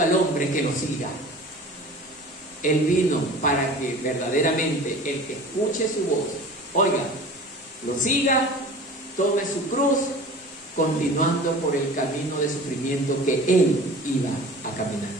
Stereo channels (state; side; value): normal; both; correlation 0.40